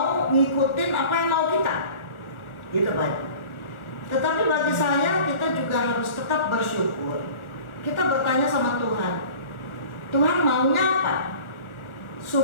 ngikutin apa yang mau kita, gitu Pak. Tetapi bagi saya kita juga harus tetap bersyukur. Kita bertanya sama Tuhan, Tuhan maunya apa?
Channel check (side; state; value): right; late; 1.4 ms